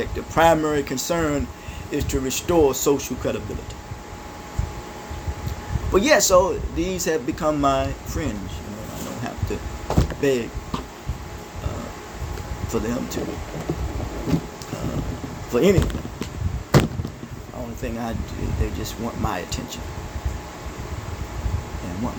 the primary concern is to restore social credibility. But so these have become my friends. I don't have to beg for them to, for anything. The only thing I do, they just want my attention and want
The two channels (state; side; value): identical; both; correlation 1.00